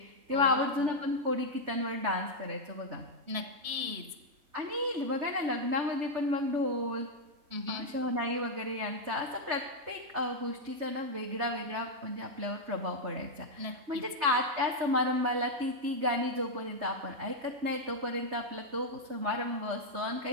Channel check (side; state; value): left; late; 3.3 ms